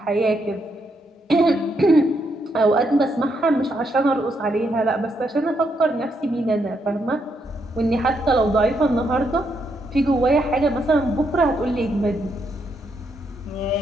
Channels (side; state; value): both; normal; correlation 0.78